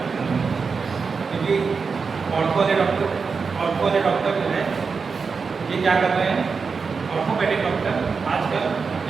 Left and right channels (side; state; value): left; quieter; 5.1 dB